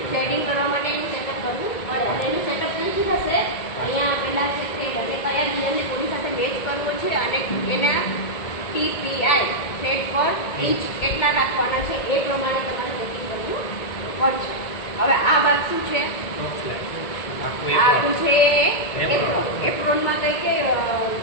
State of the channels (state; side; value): late; right; 2.2 ms